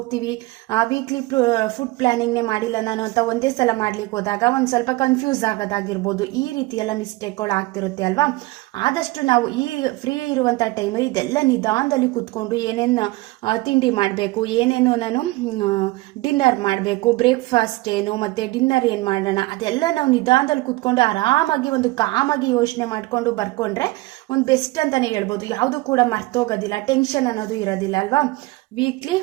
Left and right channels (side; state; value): left; quieter; 20.7 dB